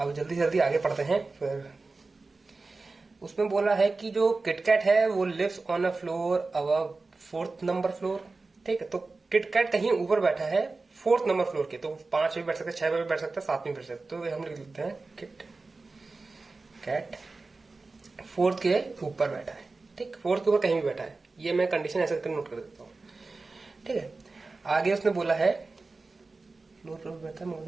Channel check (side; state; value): left; quieter; 3.7 dB